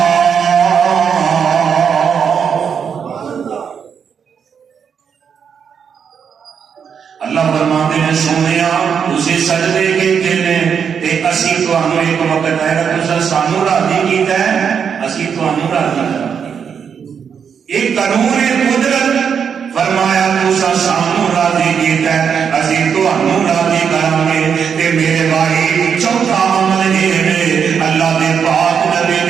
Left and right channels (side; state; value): left; quieter; 7.1 dB